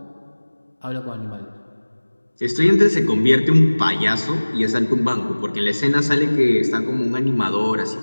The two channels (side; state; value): both; inverted; correlation -1.00